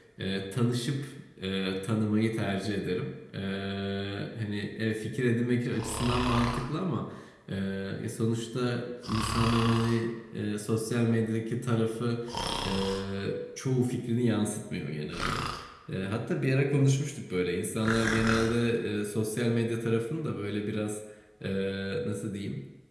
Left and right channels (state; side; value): identical; both; correlation 1.00